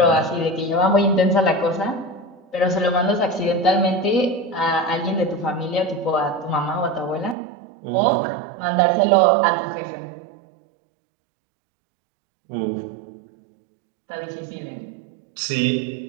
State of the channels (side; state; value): left; drops out; at 7.4 s